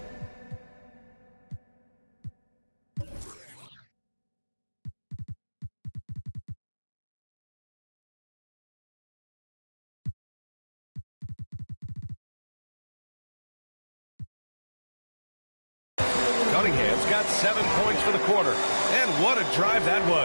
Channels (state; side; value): inverted; both; correlation -1.00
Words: Cunningham's got 7 points for the quarter. And what a drive that